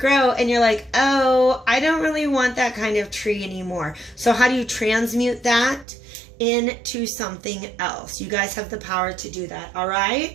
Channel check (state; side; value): drops out; left; at 5.9 s